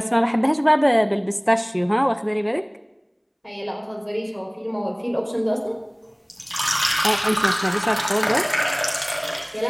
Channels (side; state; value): both; identical; correlation 1.00